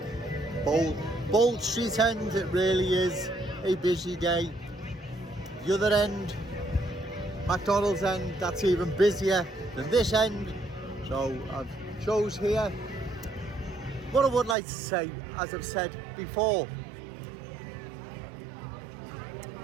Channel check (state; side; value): drops out; left; at 14.6 s